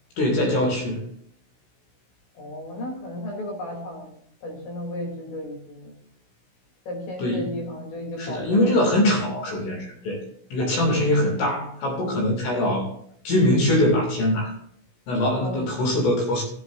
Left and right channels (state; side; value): late; right; 16 ms